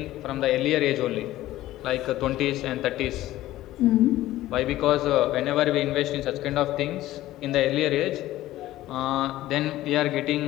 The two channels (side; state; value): right; quieter; 15.3 dB